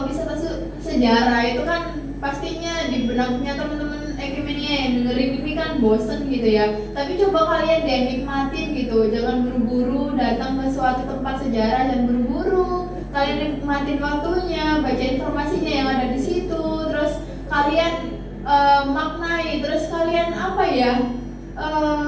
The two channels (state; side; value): identical; both; correlation 1.00